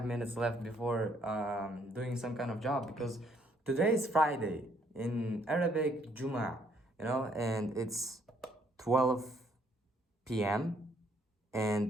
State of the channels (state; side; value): normal; both; correlation 0.67